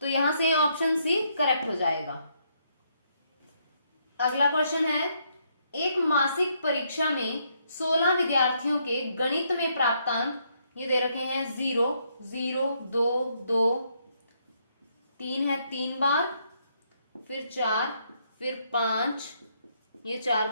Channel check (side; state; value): both; inverted; correlation -0.73